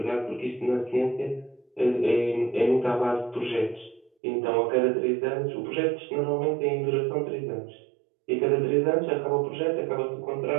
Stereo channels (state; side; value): drops out; left; at 4.1 s